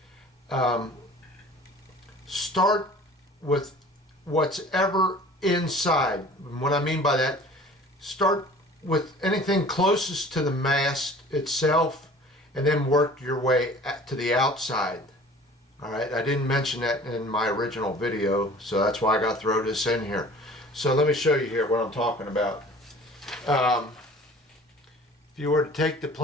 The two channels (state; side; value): normal; both; correlation 0.46